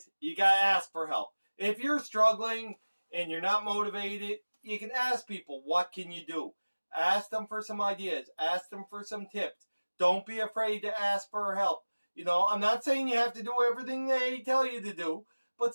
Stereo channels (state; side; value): inverted; both; correlation -1.00